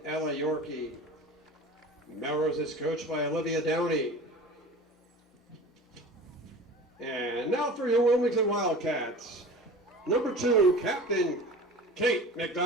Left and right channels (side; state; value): both; normal; correlation 0.38